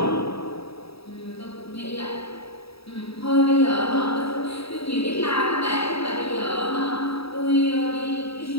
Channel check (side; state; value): right; late; 0.77 ms